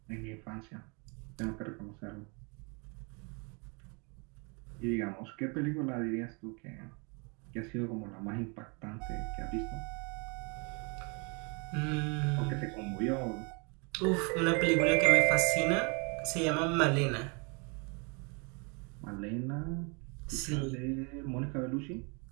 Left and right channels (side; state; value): left; quieter; 32.7 dB